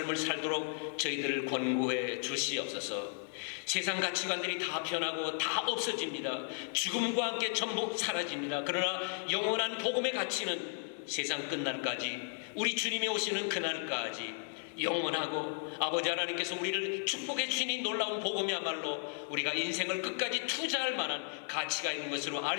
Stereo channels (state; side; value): silent; right; 55 dB below the other